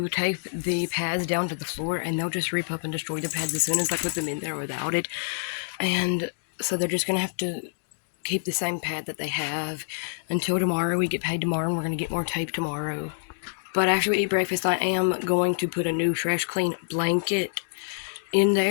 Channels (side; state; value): right; silent; digital silence